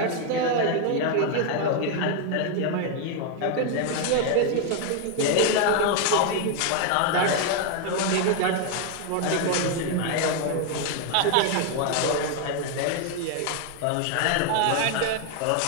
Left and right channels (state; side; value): different; both; correlation 0.00